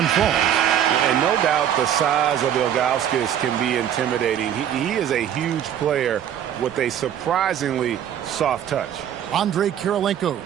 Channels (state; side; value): quieter; left; 9.9 dB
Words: falls. And no doubt the size of Ilgauskas can be intimidating. He is a huge player with a surprisingly soft touch. Andrei